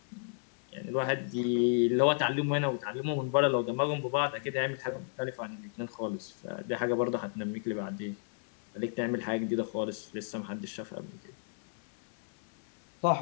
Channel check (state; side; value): silent; right; 56 dB below the other